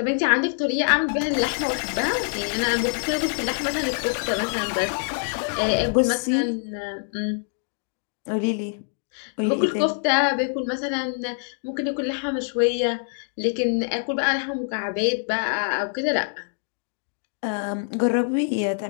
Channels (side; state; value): right; silent; 62 dB below the other